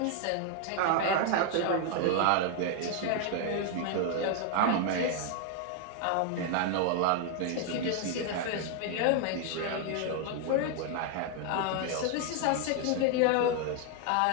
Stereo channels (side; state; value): both; different; correlation 0.00